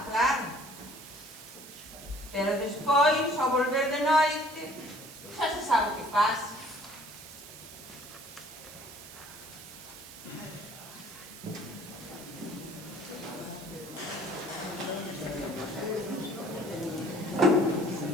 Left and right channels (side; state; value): right; noise; hiss, 15 dB below the sound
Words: claro. Pero despois, ao volver de noite, xa se sabe o que pasa.